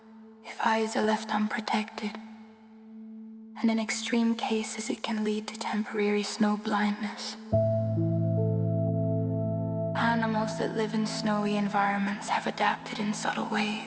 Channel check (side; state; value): both; identical; correlation 1.00